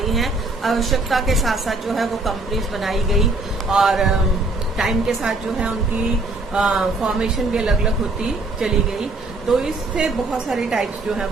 हैं। आवश्यकता के साथ साथ जो है वो कंपनीज बनाई गई और टाइम के साथ जो है उनकी फॉर्मेशन भी अलग अलग होती चली गई। तो इससे बहुत सारी टाइप्स जो है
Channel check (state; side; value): quieter; left; 3.1 dB